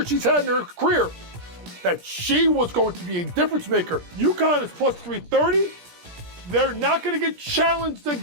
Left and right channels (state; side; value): late; left; 17 ms